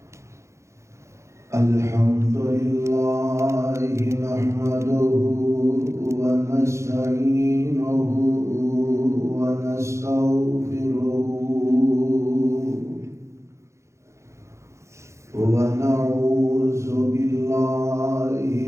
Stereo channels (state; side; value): late; left; 0.14 ms